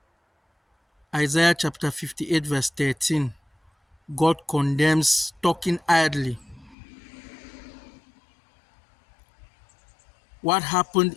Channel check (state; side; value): drops out; right; at 6.8 s